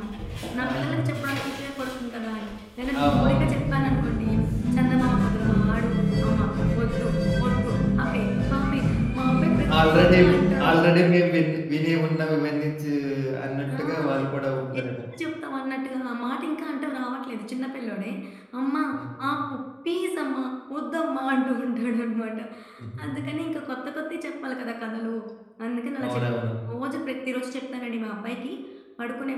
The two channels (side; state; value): both; identical; correlation 1.00